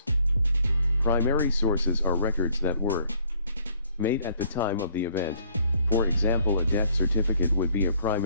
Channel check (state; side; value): inverted; both; correlation -0.62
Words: Primary sources are records that were made at the time of the event. For example, a death certificate would be a